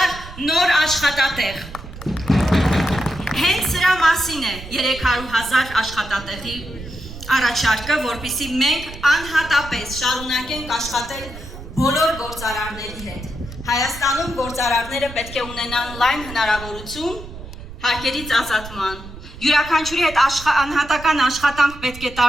նոր աշխատատեղ։ Հենց սրա մասին է 300,000 աշխատատեղի առաջարկը, որպեսզի մենք անհատապես շարունակենք աշխատել բոլոր գործարարների հետ։ Հայաստանում գործարարները պետք է ունենան լայն հնարավորություն հարկերից ազատման։ Յուրաքանչյուրի հետ անհատական աշխատանք պետք է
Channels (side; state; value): right; noise; rumble, 13 dB below the sound